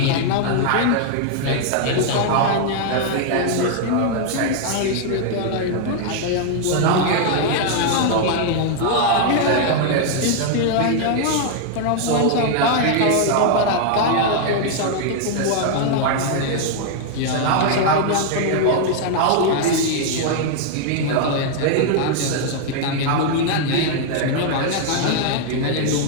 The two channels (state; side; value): different; both; correlation 0.00